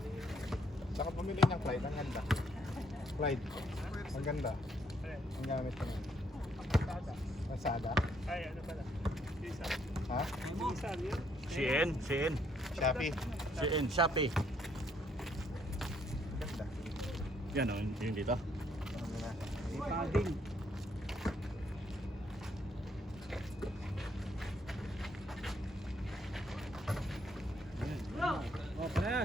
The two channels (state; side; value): normal; both; correlation 0.70